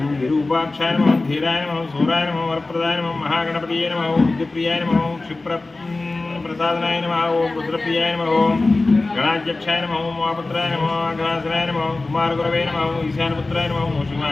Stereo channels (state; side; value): quieter; right; 3.2 dB